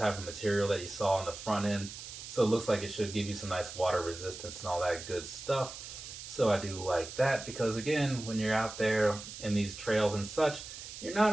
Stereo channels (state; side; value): noise; right; hiss, 11 dB below the sound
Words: of material that you saw on the front end. So it looks like it should give you some nice water resistance and all that good stuff. So I do like that, because again, when you're out there in these trails and such, you're not